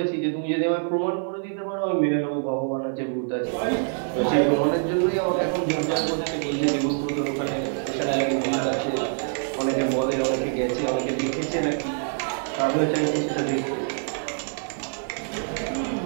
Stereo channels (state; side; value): silent; left; digital silence